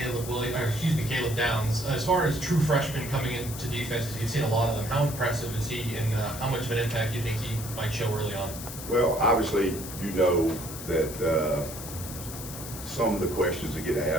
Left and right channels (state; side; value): noise; left; hiss, 10 dB below the sound